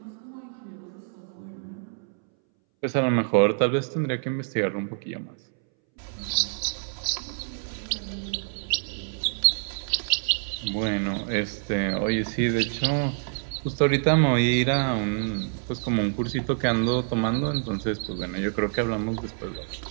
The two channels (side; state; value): left; silent; 60 dB below the other